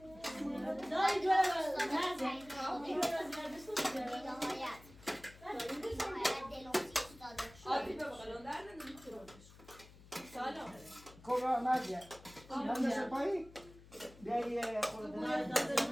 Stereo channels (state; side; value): noise; left; hum, 20 dB below the sound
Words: دای جواب نهایت دلوسی استاد. آبی به بغلان در نمیتونم سلام کبرا نادیا من دست پایی بیایی خود